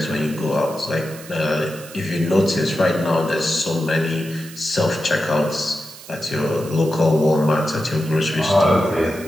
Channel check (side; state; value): right; noise; hiss, 17 dB below the sound